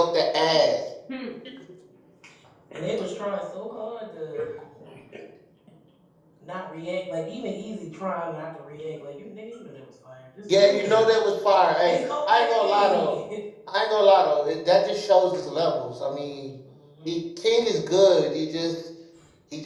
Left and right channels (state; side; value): identical; both; correlation 1.00